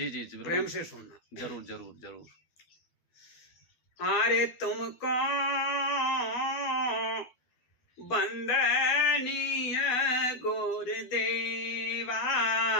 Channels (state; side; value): late; right; 12 ms